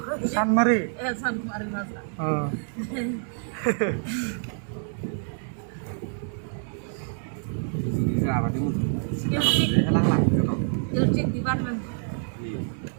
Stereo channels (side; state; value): left; silent; digital silence